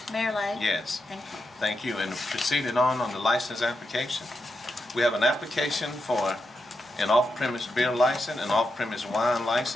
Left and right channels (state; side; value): normal; both; correlation 0.86